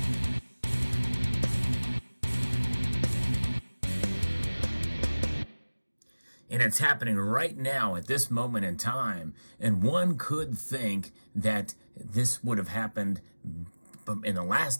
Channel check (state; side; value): inverted; both; correlation -1.00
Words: And it's happening right now at this moment in time. And one could think that this would have happened in the